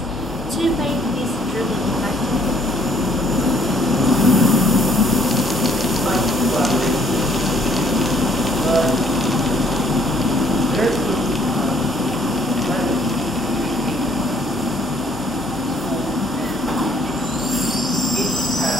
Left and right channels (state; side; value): normal; both; correlation 0.63